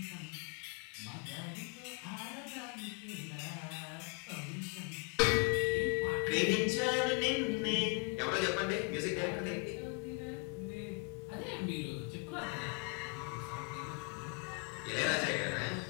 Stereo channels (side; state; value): right; quieter; 38.4 dB